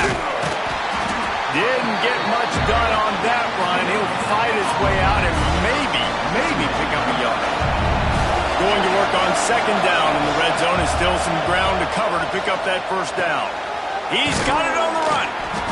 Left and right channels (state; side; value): identical; both; correlation 1.00